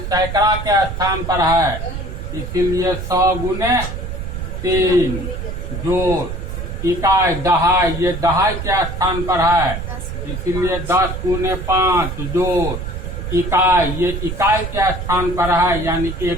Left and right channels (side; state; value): right; noise; rumble, 6 dB below the sound